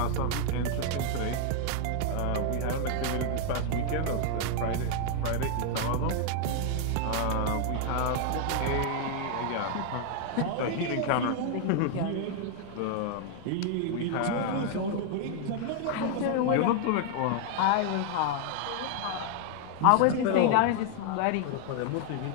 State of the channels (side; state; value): both; different; correlation 0.00